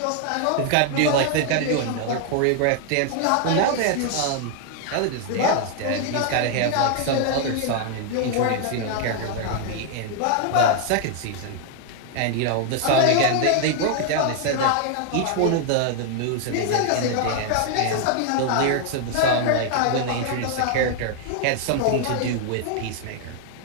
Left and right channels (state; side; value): different; both; correlation 0.00